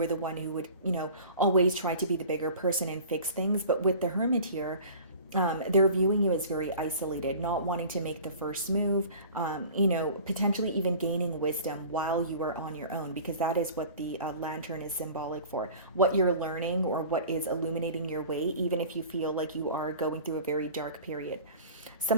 the one who would, always try to be the bigger person and fix things. But with the Hermit here, They're viewing you as very isolated, not wanting to make the first move, potentially even gaining wisdom while you are on your own, because that is what the lantern is symbolic for. What you're learning or what is illuminating your way, even if you feel like you are going through a very dark period.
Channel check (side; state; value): both; inverted; correlation -0.42